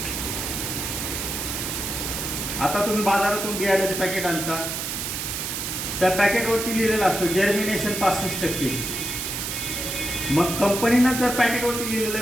आता तुम्ही बाजारातून बियाण्याचे पॅकेट आणता, त्या पॅकेटवरती लिहिलेलं असतं जर्मिनेशन 65%. मग कंपनीनं जर पॅकेटवरती लिहिलेलं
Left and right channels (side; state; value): right; noise; hiss, 4 dB below the sound